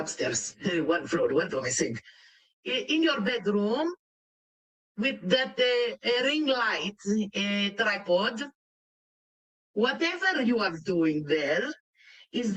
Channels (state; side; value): identical; both; correlation 1.00